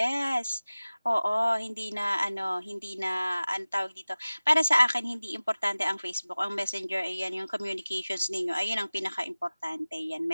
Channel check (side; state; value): both; inverted; correlation -0.98